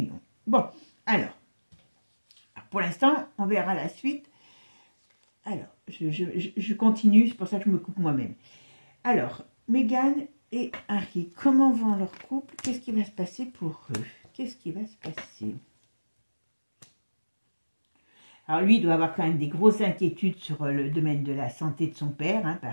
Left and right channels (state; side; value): inverted; both; correlation -1.00